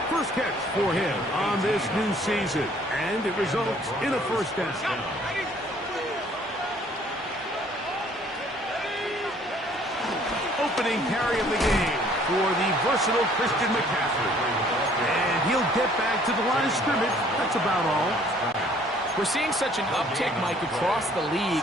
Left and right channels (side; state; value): both; normal; correlation 0.59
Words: First catch for him on this new season, and it results in a first down. Opening carry of the game for the versatile Christian McCaffrey. And he'll get back to the line of scrimmage. That's about all. We're seeing such an uptick, Mike, across the